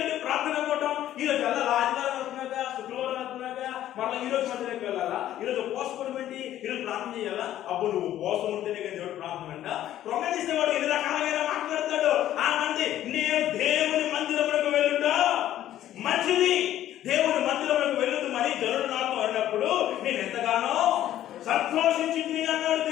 ఏంటి ప్రార్థన పోవటం, ఈ రోజు వెళ్ళాలా, ఆదివారం వెళ్తున్నాగా, శుక్రవారం వెళ్తున్నాగా, మళ్ళీ ఈ రోజు మందిరానికి వెళ్ళాలా, ఈ రోజు ఉపవాసం ఏంటి, ఈ రోజు ప్రార్థన చేయాలా? అప్పుడు నువ్వు ఉపవాసం ఉంటేనే కానీ దేవుడు ప్రార్థన అంట. ప్రొంగేసేవాడు ఎన్ని రకాలుగా మాట్లాడతాడు. ఆ మంది నేను దేవుని మందిరములకు వెళ్ళుట మంచిది, దేవుని మందిరములకు వెళ్ళుతూ మరి జనుడు నాతో అన్నప్పుడు నేను ఎంతగానో సంతోషించింది అన్నాడు.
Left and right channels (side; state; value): right; quieter; 12.5 dB